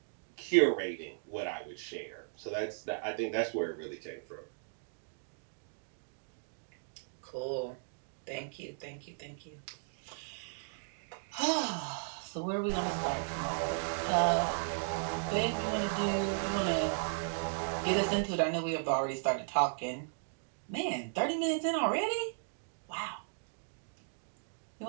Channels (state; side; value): silent; left; digital silence